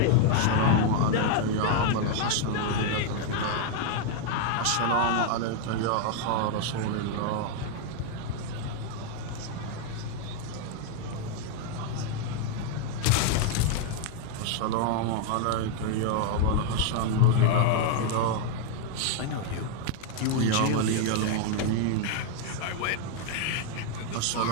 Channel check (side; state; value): both; different; correlation 0.00